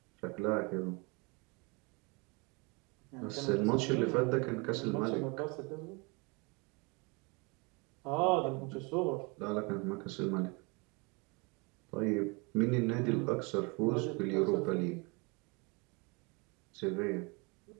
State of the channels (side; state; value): left; quieter; 29.8 dB